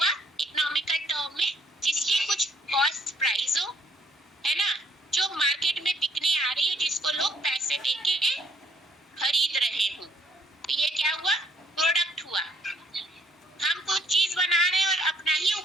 इकोनॉमिकल टर्म में, जिसकी कुछ कॉस्ट प्राइस हो, है ना, जो मार्केट में बिकने आ रही है, जिसको लोग पैसे देके खरीद रहे हो, तो ये क्या हुआ? प्रोडक्ट हुआ। हम कुछ चीज बना रहे हैं और अपना ही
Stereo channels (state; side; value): normal; both; correlation 0.64